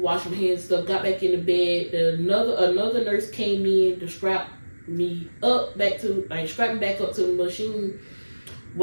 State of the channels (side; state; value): both; inverted; correlation -1.00